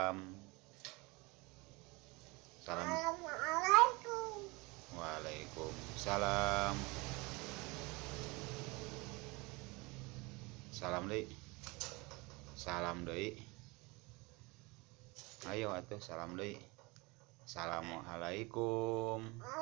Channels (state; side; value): quieter; left; 25.5 dB